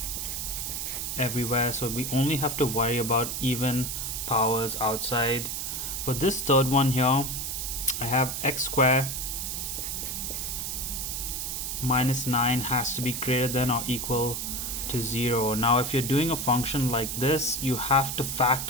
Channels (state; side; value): noise; right; hiss, 3 dB below the sound